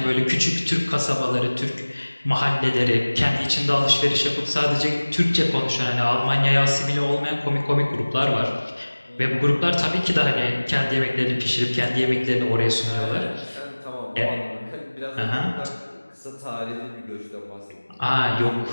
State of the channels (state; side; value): inverted; both; correlation -1.00